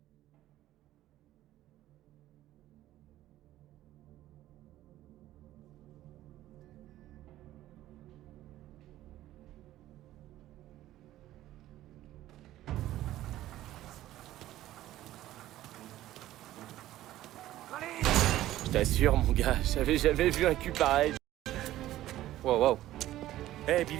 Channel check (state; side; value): quieter; left; 14.4 dB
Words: Je t'assure, mon gars, j'avais jamais vu un cul pareil. Wow, wow. Hey